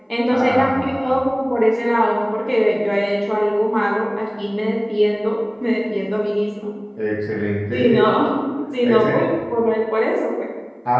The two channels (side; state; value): both; identical; correlation 1.00